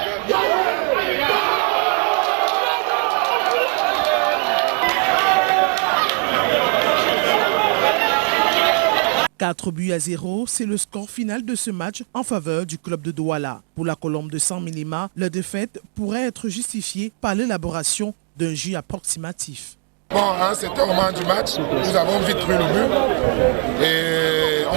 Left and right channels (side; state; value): left; quieter; 38.0 dB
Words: « 4-0, c'est le score final de ce match en faveur du club de Douala. Pour la Colombe de Sang-Mélima, la défaite pourrait être justifiée par l'élaboration d'un jeu approximatif. Bon, à un certain moment du match, nous avons vite pris le but et